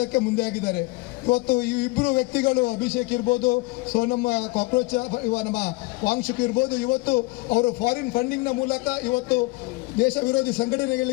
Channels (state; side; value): quieter; right; 24.2 dB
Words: ಮುಂದೆ ಆಗಿದ್ದಾರೆ. ಇವತ್ತು ಈ ಇಬ್ಬರು ವ್ಯಕ್ತಿಗಳು, ಅಭಿಷೇಕ್ ಇರ್ಬೋದು, ಸೋನಂ ಕಾಕ್ರೋಚ್ ನಮ್ಮ ವಾಂಗ್ಚುಕ್ ಇರ್ಬೋದು, ಇವತ್ತು ಅವರು ಫಾರಿನ್ ಫಂಡಿಂಗ್ನ ಮೂಲಕ ಇವತ್ತು ದೇಶ ವಿರೋಧಿ